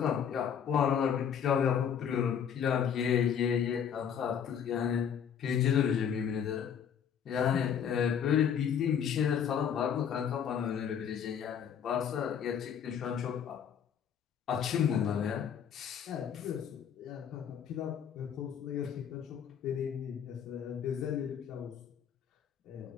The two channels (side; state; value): right; quieter; 8.2 dB